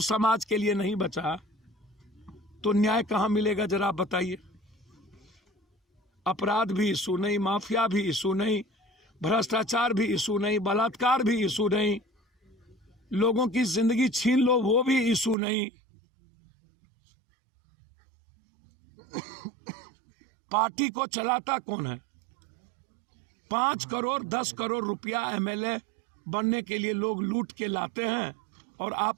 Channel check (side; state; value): left; drops out; at 15.4 s